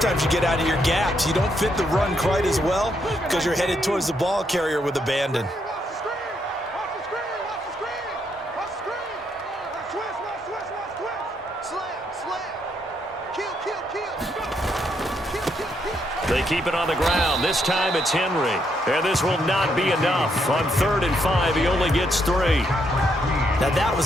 you get out of your gaps. You don't fit the run quite as well because you're headed towards the ball carrier with abandon. They keep it on the ground. This time it's Henry. And this will not be enough. On 3rd and 5, he only gets 3. Now that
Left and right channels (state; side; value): normal; both; correlation 0.76